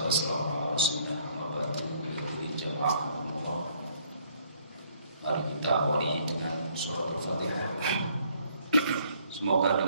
Mari kita awali dengan surah Al-Fatihah. Semoga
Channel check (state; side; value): inverted; both; correlation -0.64